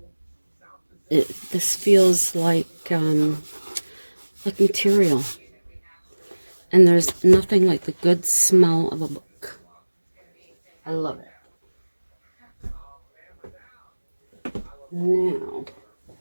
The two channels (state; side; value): inverted; both; correlation -1.00